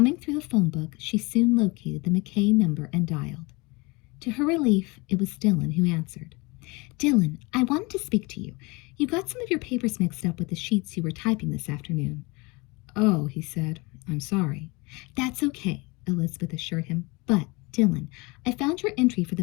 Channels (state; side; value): quieter; right; 26.0 dB